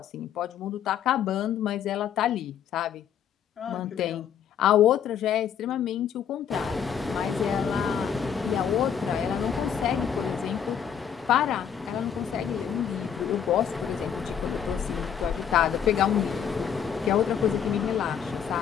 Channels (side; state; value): right; quieter; 8.3 dB